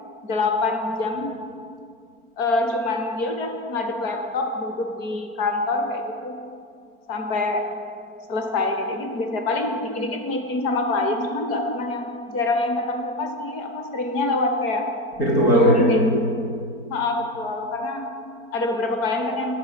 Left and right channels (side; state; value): right; late; 4.4 ms